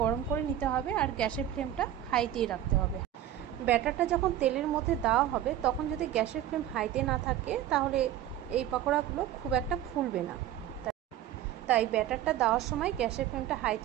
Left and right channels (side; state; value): left; quieter; 11.8 dB